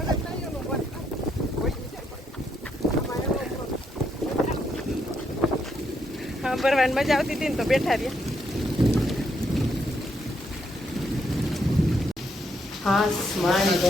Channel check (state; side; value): normal; both; correlation 0.76